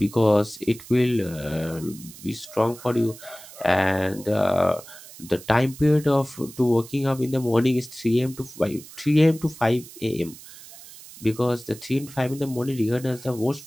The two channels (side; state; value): right; noise; hiss, 18 dB below the sound